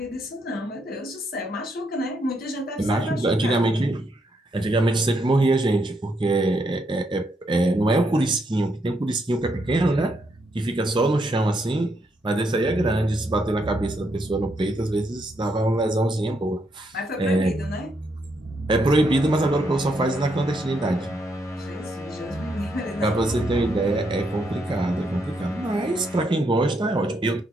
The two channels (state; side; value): normal; both; correlation 0.77